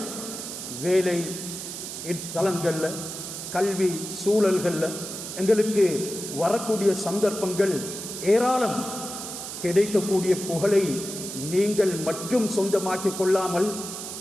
வேலை தளங்கள்ல, கல்வி சூழல்கள்ல எங்களுக்கு வரக்கூடிய சந்தர்ப்பங்கள் ஏராளம். கிடைக்கக்கூடிய புகழை நீங்கள் மட்டும் சொந்தமாக்கிக் கொள்ளாமல்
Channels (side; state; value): right; noise; hiss, 8 dB below the sound